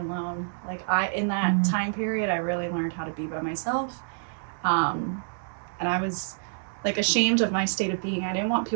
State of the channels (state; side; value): silent; left; digital silence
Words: Like in that time period, I really learned how to be by myself. And I was like ashamed of my state of being. I didn't want